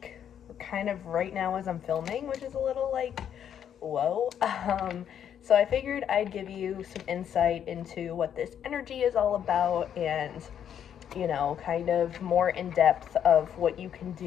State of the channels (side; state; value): right; quieter; 9.1 dB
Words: kind of right now as I'm filming, which is a little like, whoa. So I figured I'd give you some insight into what this energy is all about and kind of more in depth of what you can